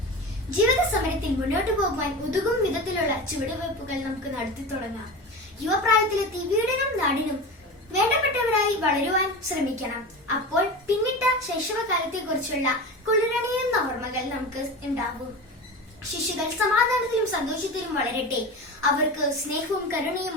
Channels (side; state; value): both; normal; correlation 0.28